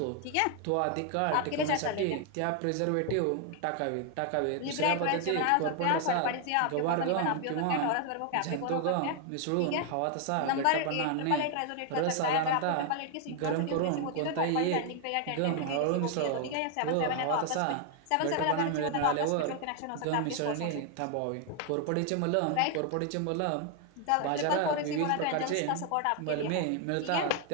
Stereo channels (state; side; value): different; both; correlation 0.00